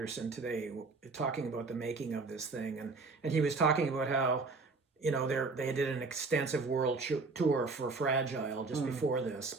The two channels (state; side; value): quieter; left; 3.9 dB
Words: today, talking about the making of this thing, and he was talking about how, they did an extensive world tour for Fragile just before